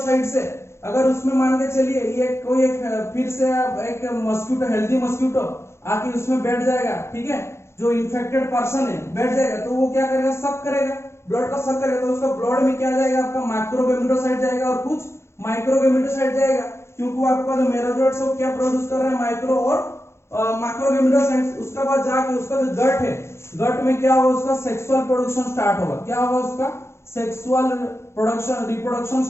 से अगर उसमें मान के चलिए ये कोई एक फिर से एक मस्क्यूटो, हेल्दी मस्क्यूटो आके उसमें बैठ जाएगा, ठीक है, जो इन्फेक्टेड पर्सन है बैठ जाएगा, तो वो क्या करेगा, सक करेगा, ब्लड का सक करेगा, तो उसका ब्लड में क्या जाएगा, आपका माइक्रोगैमेटोसाइट जाएगा और कुछ माइक्रोगैमेटोसाइट जाएगा, क्योंकि वो आपका जो मेरोजोइड्स है वो क्या प्रोड्यूस कर रहा है, माइक्रो और मैक्रोगैमेटोसाइट्स। उसके बाद जाके उसका जो गट है, गट में क्या होगा, उसका सेक्सुअल प्रोडक्शन स्टार्ट होगा, क्या होगा, उसका सेक्सुअल प्रोडक्शन, रिप्रोडक्शन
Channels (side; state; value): right; late; 0.13 ms